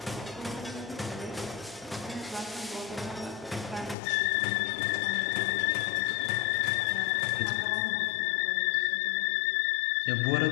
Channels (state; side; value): drops out; right; at 4.0 s